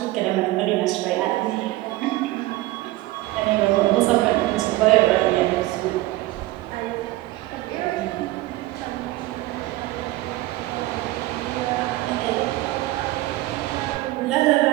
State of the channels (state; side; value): quieter; left; 18.0 dB